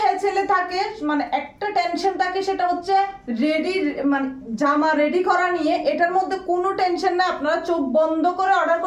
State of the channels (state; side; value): identical; both; correlation 1.00